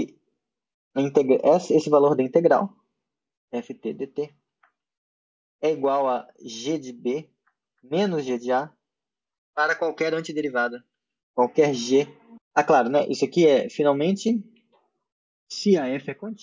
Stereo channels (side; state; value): both; identical; correlation 1.00